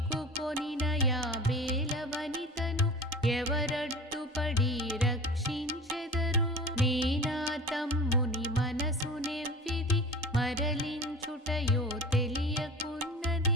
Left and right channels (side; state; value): both; normal; correlation 0.37